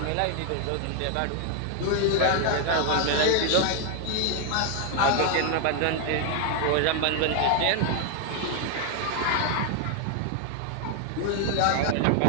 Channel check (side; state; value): both; different; correlation 0.00